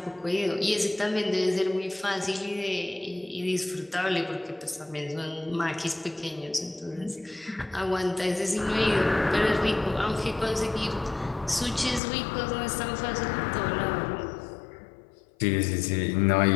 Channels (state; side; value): drops out; right; at 12.0 s